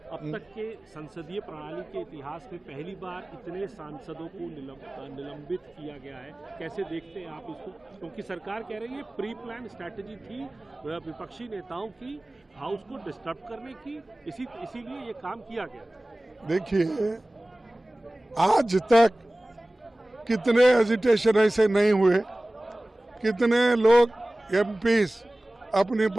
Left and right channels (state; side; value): normal; both; correlation 0.98